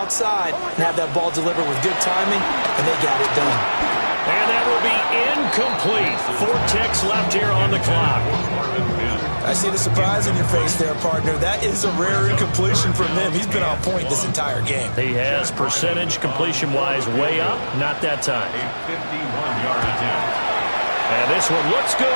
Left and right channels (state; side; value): inverted; both; correlation -1.00